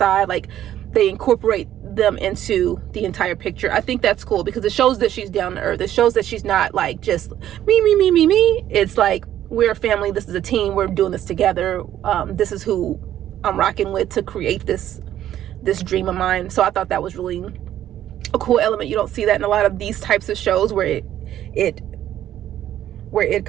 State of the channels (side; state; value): left; quieter; 11.8 dB